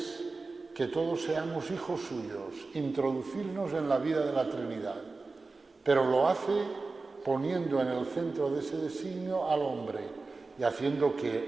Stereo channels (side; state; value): left; quieter; 3.8 dB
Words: que todos seamos hijos suyos, introducirnos en la vida de la Trinidad, pero lo hace poniendo en el centro de ese designio al hombre y haciendo